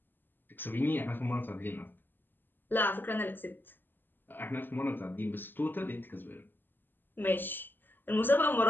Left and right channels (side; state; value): right; late; 0.093 ms